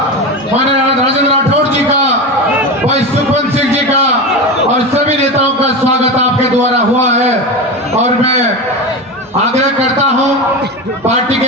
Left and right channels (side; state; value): both; normal; correlation 0.22